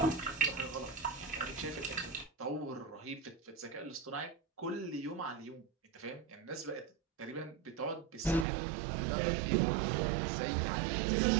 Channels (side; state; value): left; drops out; at 8.5 s